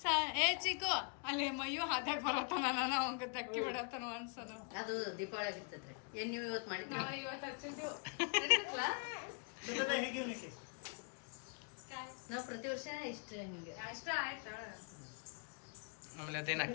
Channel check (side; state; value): right; quieter; 35.7 dB